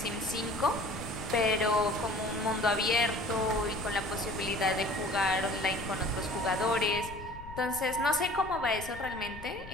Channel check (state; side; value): noise; left; rumble, 14 dB below the sound